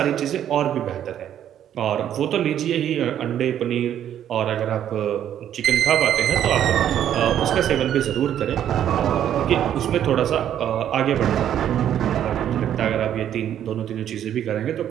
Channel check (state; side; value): quieter; left; 10.4 dB